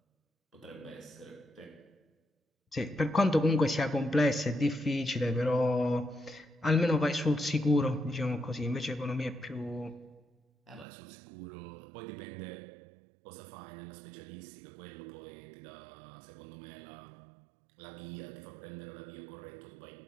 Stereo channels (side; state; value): left; drops out; at 10.9 s